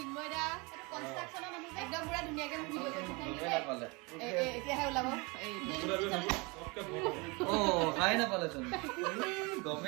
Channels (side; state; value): left; quieter; 27.6 dB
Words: এটা কনস্ট্ৰাকচনৰ মানুহ একদম পুৰা ধুনিয়াকে ভিডিও কৰি থাকে এতিয়া হে ওলাব পঢ়াই নাপালেচোন